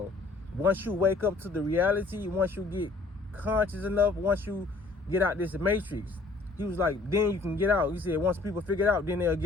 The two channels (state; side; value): quieter; right; 3.5 dB